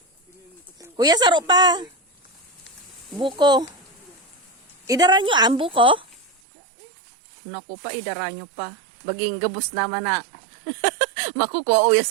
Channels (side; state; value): left; drops out; at 6.4 s